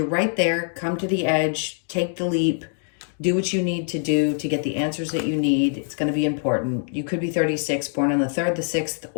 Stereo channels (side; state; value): right; silent; 57 dB below the other